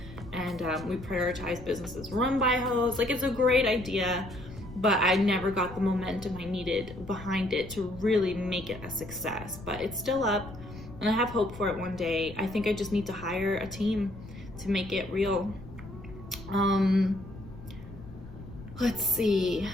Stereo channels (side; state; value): left; noise; rumble, 15 dB below the sound